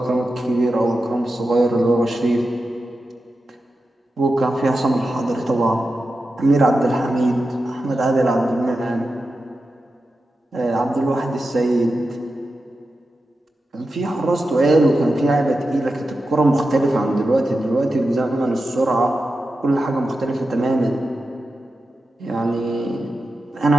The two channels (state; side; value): normal; both; correlation 0.91